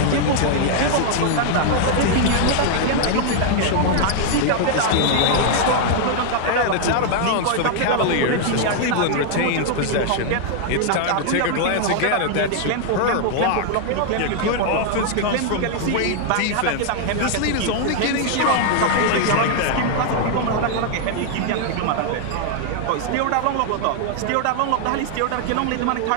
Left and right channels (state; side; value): different; both; correlation 0.00